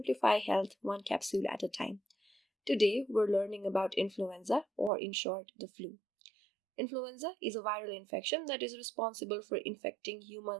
health one capsule at a time. Today, we're learning about influenza, or in short, the flu. Influenza is a viral infection that is responsible for infecting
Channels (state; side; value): drops out; left; at 4.9 s